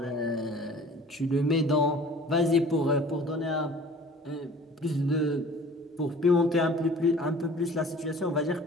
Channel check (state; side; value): normal; both; correlation 0.47